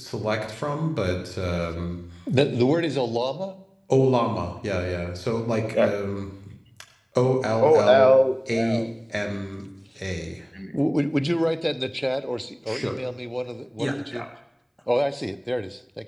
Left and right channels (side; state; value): both; identical; correlation 1.00